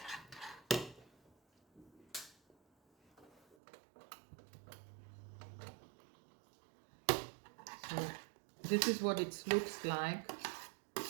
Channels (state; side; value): drops out; left; at 3.6 s